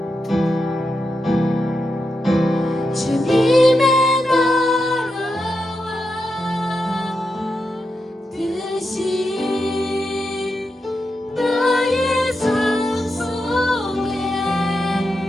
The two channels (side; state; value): both; normal; correlation 0.87